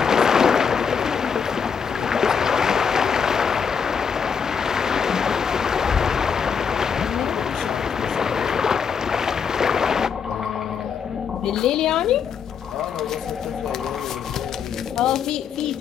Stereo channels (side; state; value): right; quieter; 6.6 dB